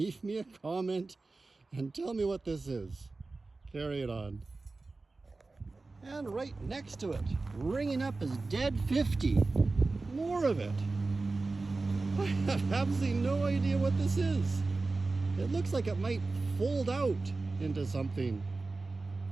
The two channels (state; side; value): quieter; left; 3.6 dB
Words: me a comment and tell me what this is. Carry it on. And right next to it, ringing up is Dead 50. More of it. I have absolutely no idea what this is. It looks like it might fold out into something,